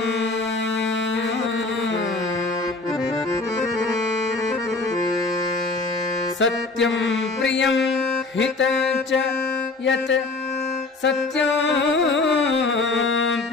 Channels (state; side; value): quieter; right; 3.6 dB